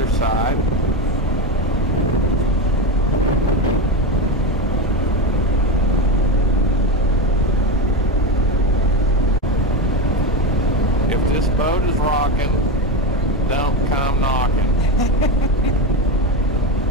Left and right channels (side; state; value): both; normal; correlation 0.15